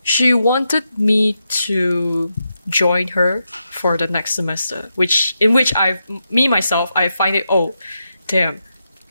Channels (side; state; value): both; inverted; correlation -0.86